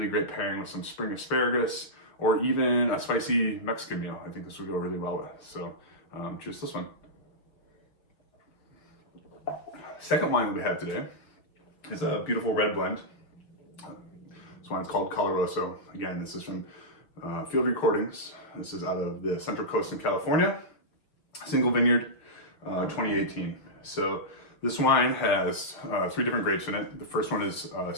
great pairing with some spring asparagus or even a spicy Mexican meal. I think this would go really well with. So choose this one. Second wine that we have today is a beautiful red blend. This wine's called Colaroso. Again, this is from Field Recordings. This is out of the Central Coast in California. Single vineyard, 2018. So this wine has 3 different grapes in it. The first one is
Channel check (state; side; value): late; right; 6.2 ms